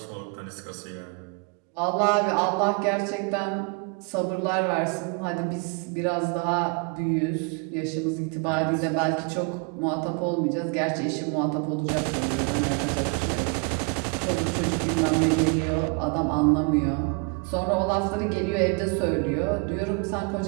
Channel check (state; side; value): quieter; left; 32.4 dB